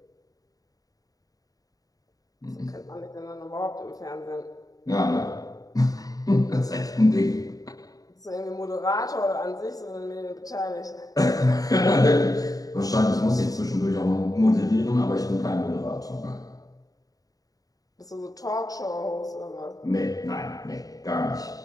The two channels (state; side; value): late; right; 0.18 ms